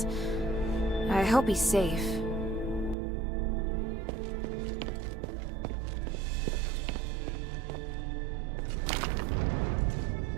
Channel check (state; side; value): drops out; left; at 3.0 s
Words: I hope he's safe.